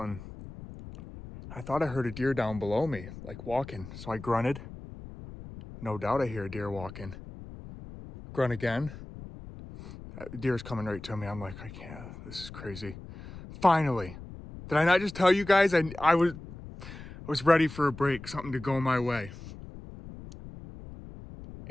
I thought I heard a deer down below me, like walking. So I grunted. No doubt I hear a deer walking. Grunt again. Deer's coming right to me. I'm like, I can't. This is crazy. Finally. Did I not just tell you guys? I was ready for a break, something to go my way.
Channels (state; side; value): noise; left; rumble, 14 dB below the sound